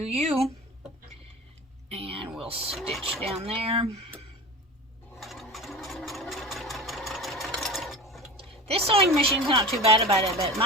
And we'll stitch down there. This sewing machine's not too bad about it, but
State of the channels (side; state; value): both; normal; correlation 0.32